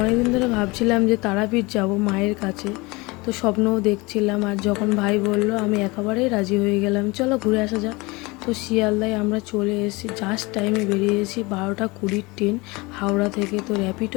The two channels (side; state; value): right; quieter; 24.4 dB